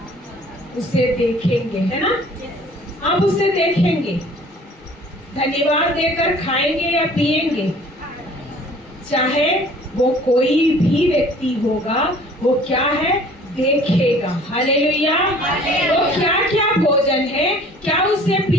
उसे देखेंगे, है ना? आप उसे देखेंगे, धन्यवाद देकर खाएंगे या पिएंगे? चाहे वो कोई भी व्यक्ति होगा, वो क्या है? देखेगा। हालेलुया। वो क्या क्या भोजन है, क्या उसे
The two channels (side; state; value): both; normal; correlation 0.51